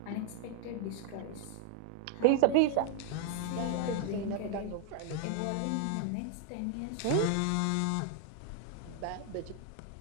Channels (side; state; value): both; different; correlation 0.00